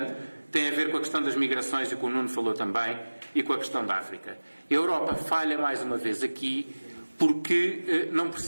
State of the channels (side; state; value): both; inverted; correlation -1.00